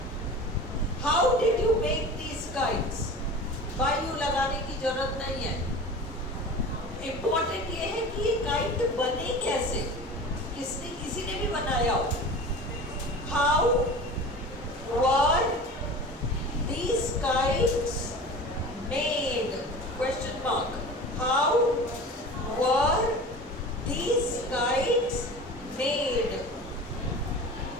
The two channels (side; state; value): both; normal; correlation 0.35